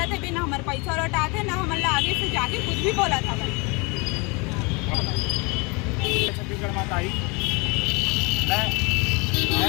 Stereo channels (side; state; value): right; quieter; 29.0 dB